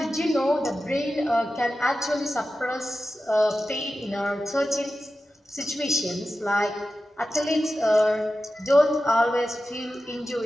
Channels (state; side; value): normal; both; correlation 0.93